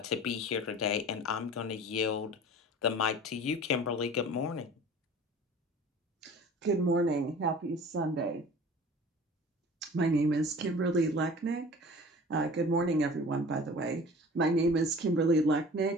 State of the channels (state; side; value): normal; both; correlation 0.42